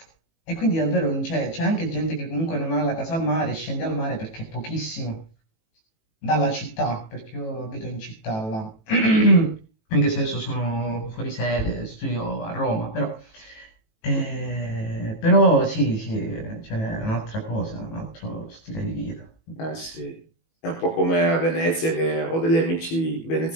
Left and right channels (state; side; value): late; right; 18 ms